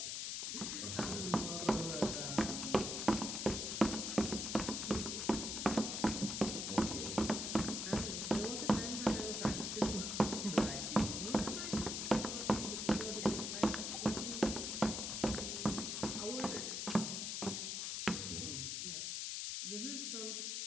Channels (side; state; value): left; noise; hiss, 2 dB below the sound